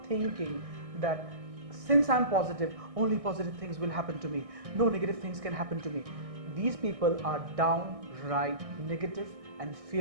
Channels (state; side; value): late; left; 1.6 ms